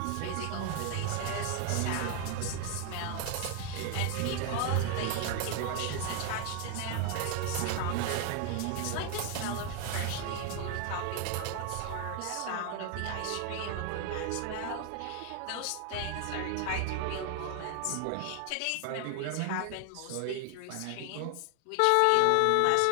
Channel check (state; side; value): different; both; correlation 0.01